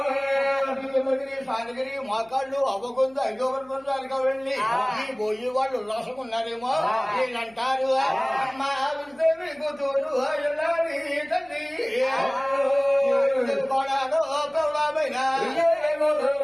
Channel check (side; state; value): left; noise; hum, 29 dB below the sound